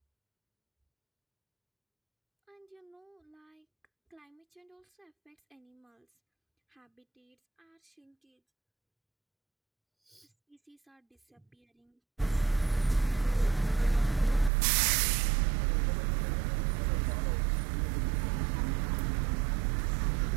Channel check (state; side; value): drops out; left; at 14.5 s